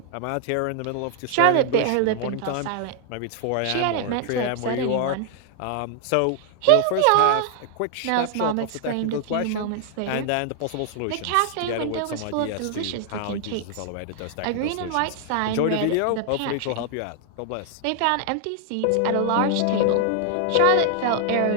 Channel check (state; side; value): different; both; correlation 0.00